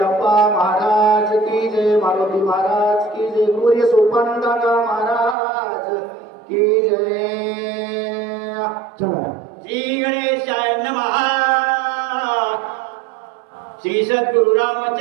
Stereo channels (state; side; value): drops out; left; at 5.4 s